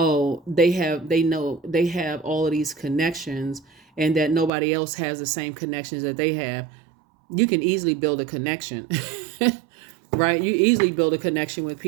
they have all of these connections, and that nobody else has the same connections that they have. You can easily build a connection. Right? You easily build a connection with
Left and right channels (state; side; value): drops out; left; at 4.5 s